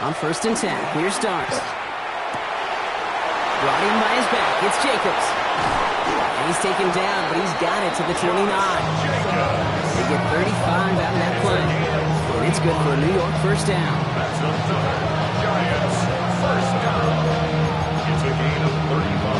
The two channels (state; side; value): identical; both; correlation 1.00